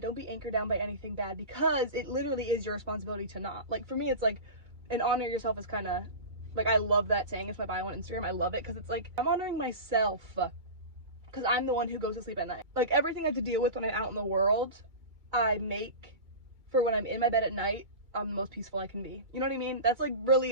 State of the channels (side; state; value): left; late; 2.3 ms